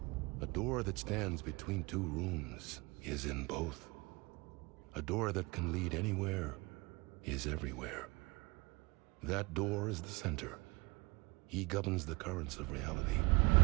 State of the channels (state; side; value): quieter; left; 24.7 dB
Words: A door that stands between two rooms is in both. A door that can lead anywhere is everywhere. That door is the center. He governs the currents of reality.